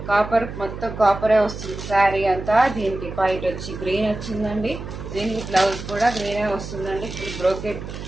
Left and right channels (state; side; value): noise; right; hum, 9 dB below the sound